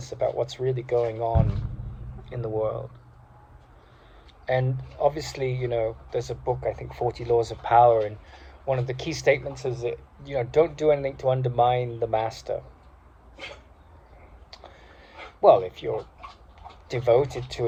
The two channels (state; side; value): identical; both; correlation 1.00